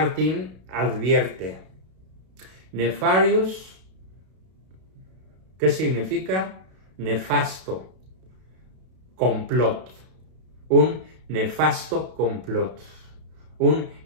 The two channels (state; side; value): late; left; 32 ms